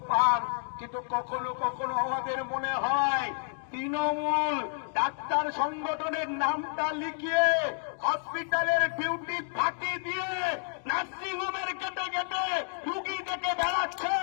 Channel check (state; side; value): silent; right; 58 dB below the other